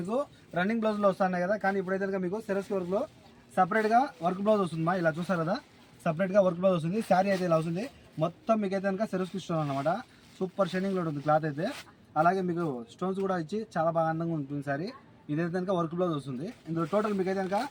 రన్నింగ్ బ్లౌజ్ లో వస్తున్నాయి కదా, కానీ ఇప్పుడైతే మీకు సేల్స్ కి వర్క్ లో సపరేట్ గా వర్క్ బ్లౌజ్ వస్తుంది. ఇలా చూసారు కదా, సపరేట్ గా వర్క్ బ్లౌజ్ వస్తుంది. శారీ అయితే ఇలా వస్తుంది. మొత్తం మీకు అయితే కనుక సెరస్ కి ఇస్తున్నాను అనమాట. సూపర్ షైనింగ్ లో ఉంటుంది క్లాత్ అయితే. అలాగే మీకు స్టోన్స్ కూడా ఇచ్చి చాలా బాగా అందంగా ఉంటుంది శారీ. ఇదైతే కనుక వర్క్ బ్లౌజ్ వస్తుంది. ఇందులో టోటల్ మీకు అయితే కనుక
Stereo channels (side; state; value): both; identical; correlation 1.00